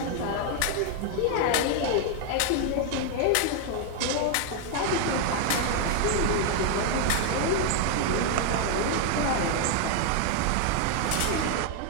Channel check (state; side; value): different; both; correlation 0.01